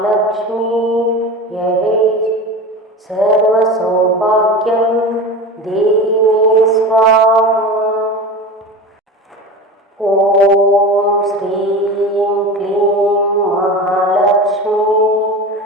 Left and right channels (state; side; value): normal; both; correlation 0.30